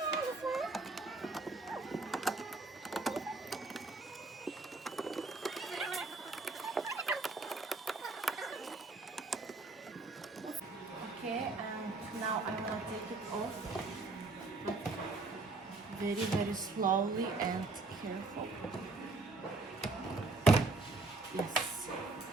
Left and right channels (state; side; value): quieter; left; 3.5 dB